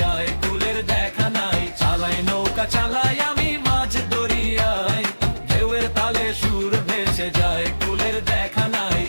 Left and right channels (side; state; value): both; inverted; correlation -1.00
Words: কুলের দেখা নাই। চালাই নৌকা চালাই আমি মাঝ দরিয়ায়, ঢেউয়ের তালে সুর ভেসে যায়, কুলের দেখা নাই।